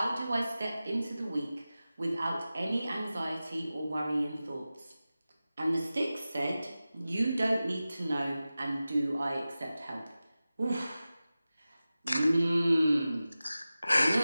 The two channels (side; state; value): both; inverted; correlation -0.96